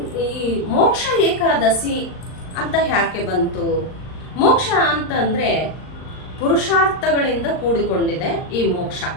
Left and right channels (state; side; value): late; right; 39 ms